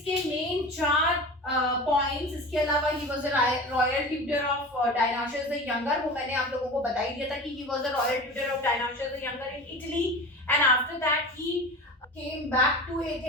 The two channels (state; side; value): normal; both; correlation 0.34